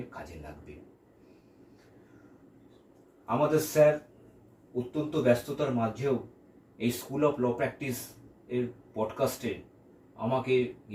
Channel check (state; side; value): identical; both; correlation 1.00